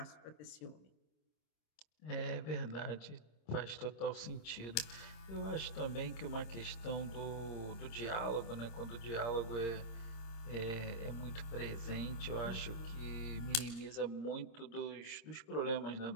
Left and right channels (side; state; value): right; late; 26 ms